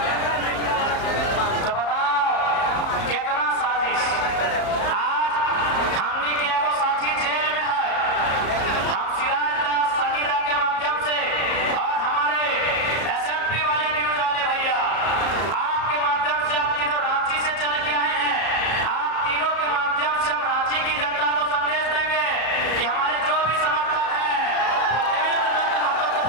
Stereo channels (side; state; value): right; late; 34 ms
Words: तो बताओ कितना साजिश। आज हमनी के एगो साथी जेल में है, हम सिराजदास सन्नीदा के माध्यम से और हमारे एसएमपी वाले न्यूज वाले भैया आपके माध्यम से, आप तीनों रांची से चल के आए हैं, आप तीनों के माध्यम से हम रांची की जनता को संदेश देंगे कि हमारे जो भी समर्थक हैं देवेंद्र नाथ महतो को